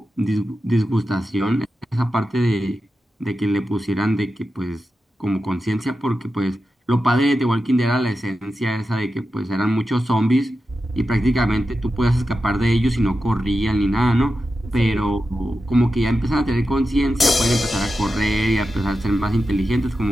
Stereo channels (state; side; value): normal; both; correlation 0.91